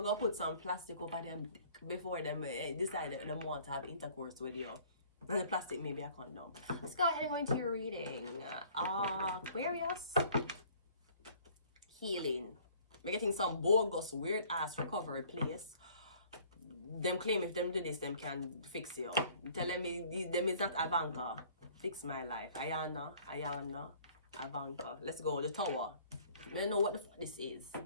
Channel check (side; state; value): both; inverted; correlation -0.55